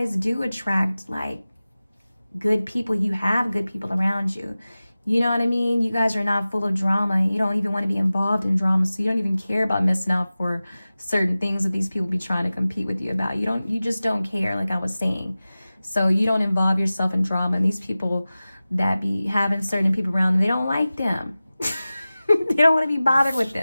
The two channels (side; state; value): both; inverted; correlation -0.97